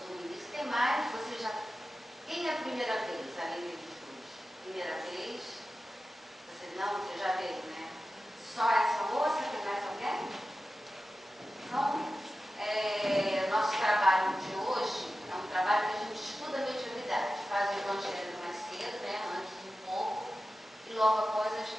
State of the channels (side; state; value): both; normal; correlation 0.94